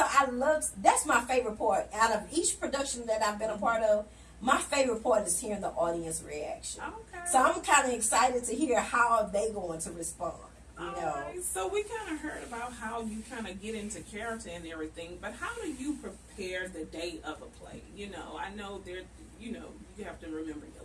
I love, that's my favorite part. Out of each production that I've been a part of, my favorite part is hearing the audience reaction. Okay. So I'm kind of excited to hear how they going to respond. You know. Right. So we kind of heard about how you kind of get into character and everything, but how do you prepare the day of a play? You know, I know you have to remember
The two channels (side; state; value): both; identical; correlation 1.00